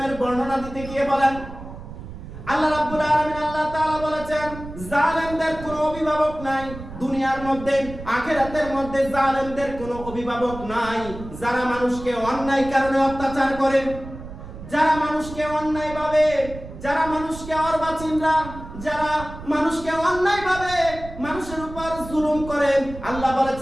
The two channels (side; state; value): right; noise; rumble, 13 dB below the sound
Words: বর্ণনা দিতে গিয়ে বলেন, আল্লাহ রাব্বুল আলামিন আল্লাহ তাআলা বলেছেন জালেমদের কোনো অভিভাবক নাই। দুনিয়ার মধ্যে আখিরাতের মধ্যে জালেমদের কোনো অভিভাবক নাই। যারা মানুষকে অন্যায় কারণে অত্যাচার করে, যারা মানুষকে অন্যায়ভাবে, যারা মানুষকে অর্বাচীনরা, যারা মানুষকে অন্যায়ভাবে মানুষের উপর জুলুম করে, আল্লাহ